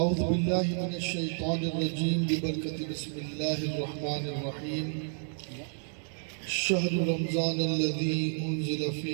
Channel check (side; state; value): left; silent; 57 dB below the other